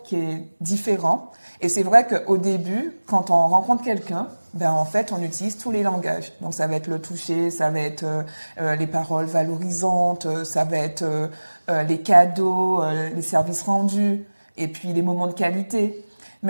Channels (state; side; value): inverted; both; correlation -1.00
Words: qui est différent. Et c'est vrai qu'au début, quand on rencontre quelqu'un, ben en fait, on utilise tous les langages. Donc, ça va être le toucher, ça va être les paroles valorisantes, ça va être les cadeaux, les services rendus, et puis les moments de qualité.